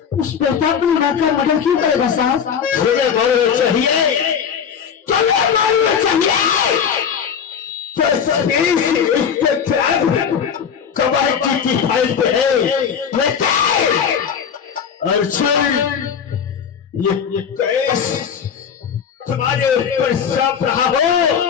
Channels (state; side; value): quieter; right; 7.4 dB